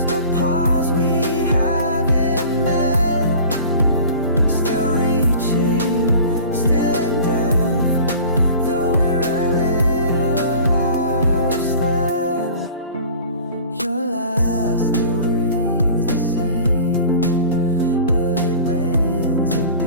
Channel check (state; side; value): inverted; both; correlation -0.42